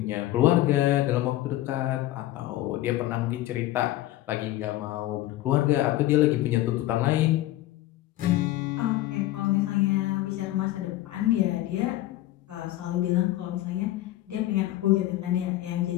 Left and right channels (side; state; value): right; quieter; 15.4 dB